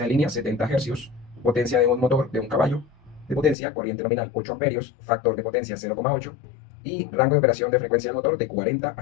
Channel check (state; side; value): drops out; right; at 3.6 s